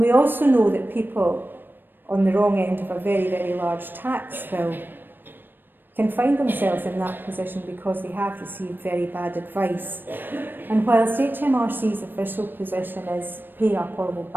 we also know that people on the wrong end of a very, very large tax bill can find themselves in that position because they have received very bad advice. And whilst HMRC's official position is pay up or we'll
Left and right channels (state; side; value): late; left; 0.094 ms